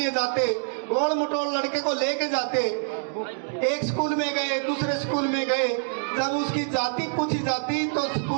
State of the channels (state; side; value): silent; left; digital silence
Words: जाते, गोल मटोल लड़के को लेके जाते, एक स्कूल में गए, दूसरे स्कूल में गए, जब उसकी जाति पूछी जाती तो